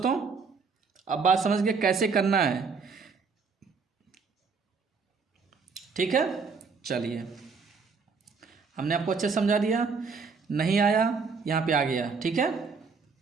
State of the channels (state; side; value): quieter; left; 5.0 dB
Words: अब बात समझ के कैसे करना है। ठीक है, चलिए हमने आपको अच्छे समझा दिया। नहीं आया यहाँ पे आ गया। ठीक है,